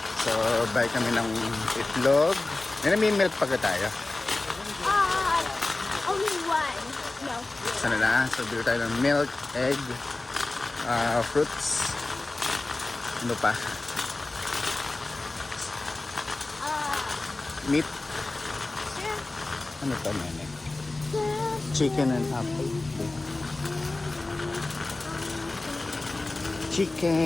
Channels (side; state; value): right; quieter; 3.1 dB